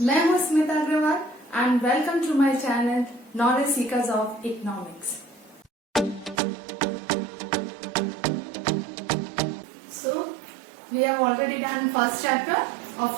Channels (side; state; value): left; drops out; at 6.4 s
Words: मैं हूं Smita Agrawal and welcome to my channel knowledge seekers of economics. So we have already done first chapter of